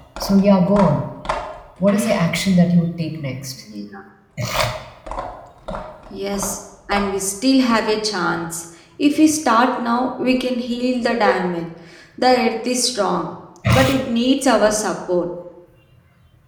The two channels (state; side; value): identical; both; correlation 1.00